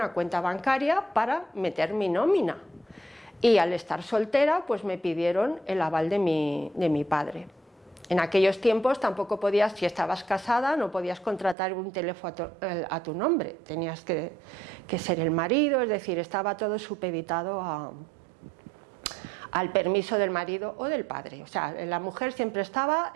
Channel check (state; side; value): drops out; left; at 11.6 s